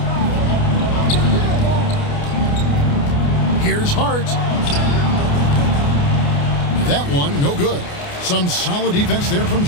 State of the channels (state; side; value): late; right; 29 ms